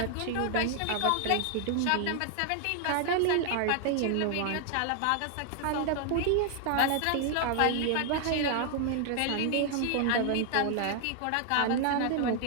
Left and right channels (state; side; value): different; both; correlation 0.00